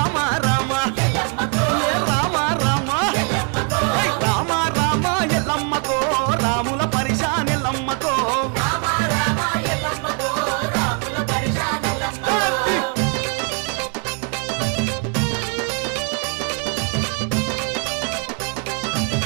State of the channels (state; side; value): quieter; left; 39.7 dB